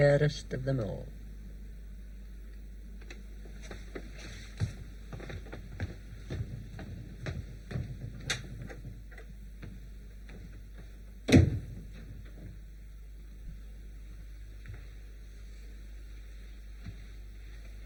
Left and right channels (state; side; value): identical; both; correlation 1.00